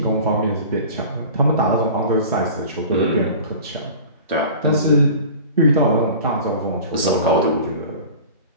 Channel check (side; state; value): both; inverted; correlation -0.40